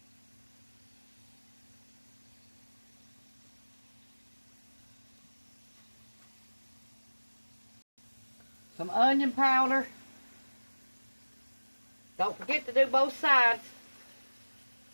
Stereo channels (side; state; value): both; inverted; correlation -1.00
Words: Some onion powder. Don't forget to do both sides.